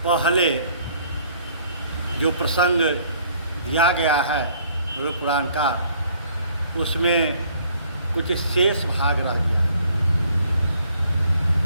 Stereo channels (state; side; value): inverted; both; correlation -0.61